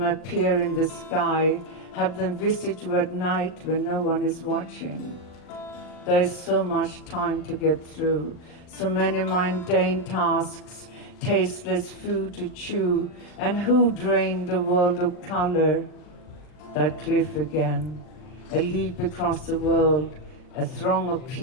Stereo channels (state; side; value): late; right; 39 ms